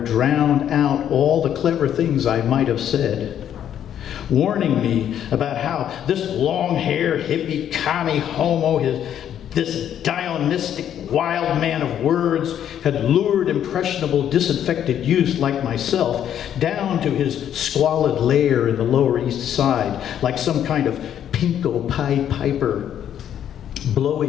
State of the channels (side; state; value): right; quieter; 10.0 dB